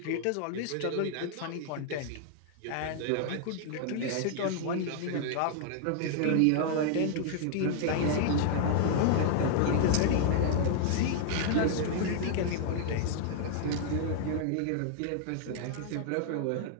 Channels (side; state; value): both; different; correlation -0.01